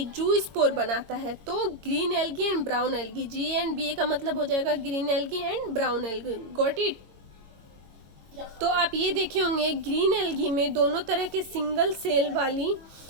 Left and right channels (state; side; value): late; left; 22 ms